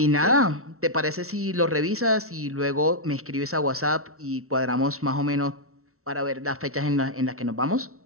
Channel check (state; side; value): late; left; 0.63 ms